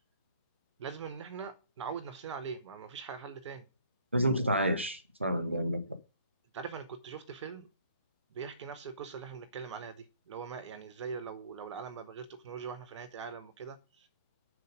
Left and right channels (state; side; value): inverted; both; correlation -0.57